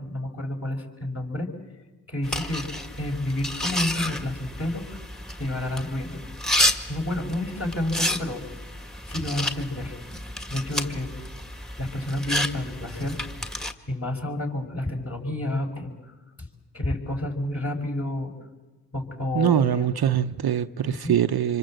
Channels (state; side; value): normal; both; correlation 0.46